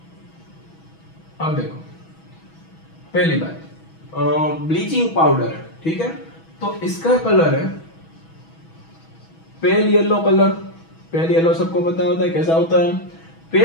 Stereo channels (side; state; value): right; late; 6.2 ms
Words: अब देखो पहली बात ब्लीचिंग पाउडर है, ठीक है? तो इसका कलर है pale yellow colour. Pale yellow सबको पता होता है कैसा होता है?